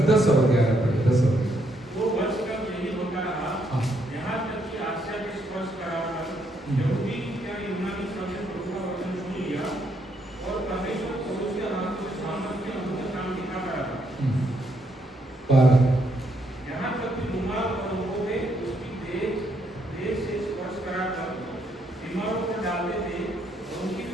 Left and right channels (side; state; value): both; normal; correlation 0.74